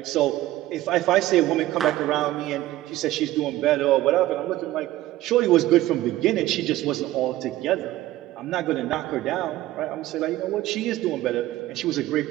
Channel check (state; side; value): quieter; left; 15.6 dB